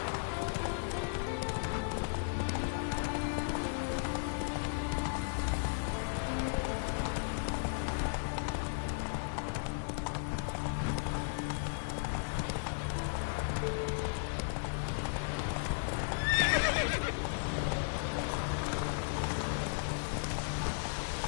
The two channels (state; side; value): silent; right; digital silence